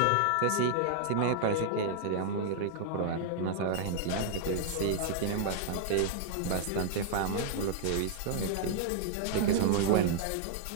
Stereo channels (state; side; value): different; both; correlation -0.01